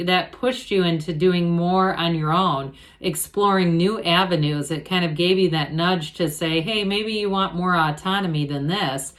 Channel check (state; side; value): identical; both; correlation 1.00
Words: that pushed you into doing more on your own, exploring new avenues. It kind of gave you that nudge to say, hey, maybe you want more autonomy than this.